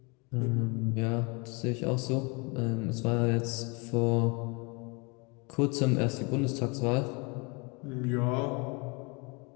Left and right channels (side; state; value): right; quieter; 30.2 dB